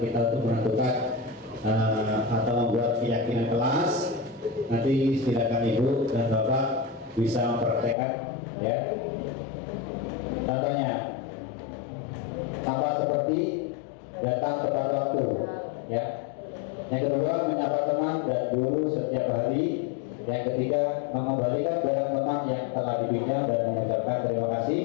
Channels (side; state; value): right; drops out; at 8.0 s